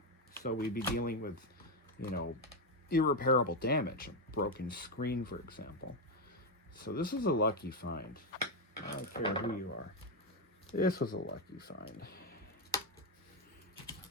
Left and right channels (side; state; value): both; normal; correlation 0.06